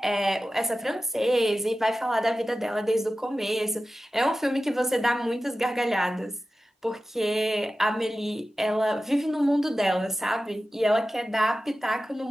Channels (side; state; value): both; normal; correlation 0.94